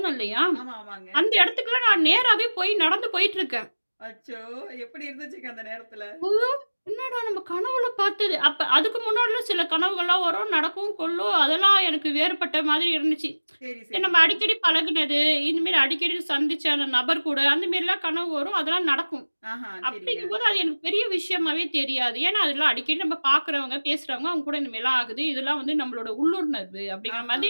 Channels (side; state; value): both; inverted; correlation -1.00